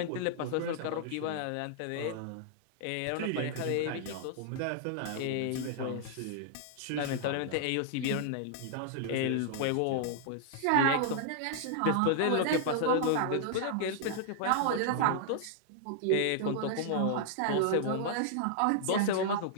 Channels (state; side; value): different; both; correlation -0.01